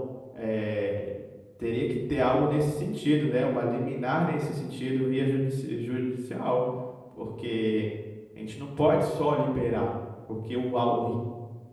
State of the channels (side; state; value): both; identical; correlation 1.00